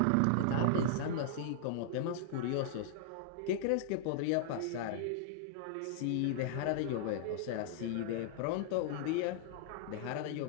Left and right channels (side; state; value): both; different; correlation -0.01